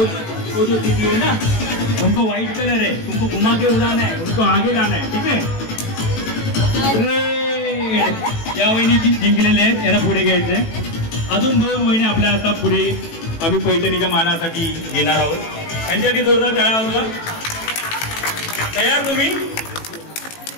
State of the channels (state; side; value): late; right; 18 ms